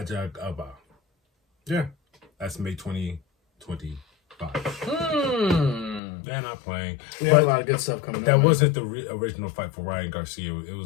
Yeah. That's May 2025. They're not playing. We have a lot of good stuff coming up. That wasn't the original fight for Ryan Garcia. He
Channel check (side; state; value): right; drops out; at 6.0 s